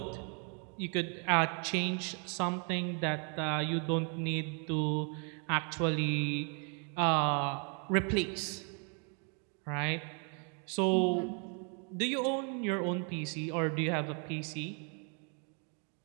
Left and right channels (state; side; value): quieter; left; 39.4 dB